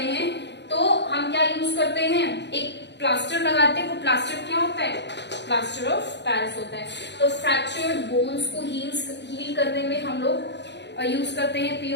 हैं तो हम क्या यूज करते हैं? एक प्लास्टर लगाते हैं। वो प्लास्टर क्या होता है? प्लास्टर ऑफ पेरिस होता है। तो फ्रैक्चर्ड बोन्स को हील करने में हम लोग यूज करते हैं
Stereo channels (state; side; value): late; right; 0.51 ms